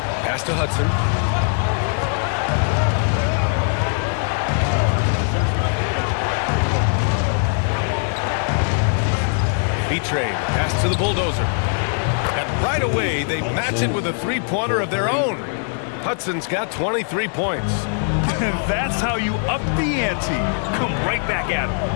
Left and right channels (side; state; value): right; silent; 61 dB below the other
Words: Pass to Hudson. B-Trade, pass to the bulldozer. And right away, they match it with a 3-pointer of their own. Hudson's got 23 points. That's how you up the ante. Come right back at him.